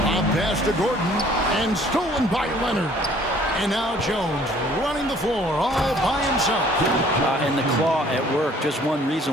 pass to Gordon and stolen by Leonard. And now Jones running the floor all by himself. And the claw at work. Just one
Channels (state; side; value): normal; both; correlation 0.57